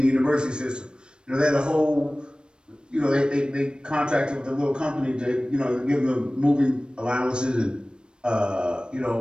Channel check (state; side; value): late; left; 0.054 ms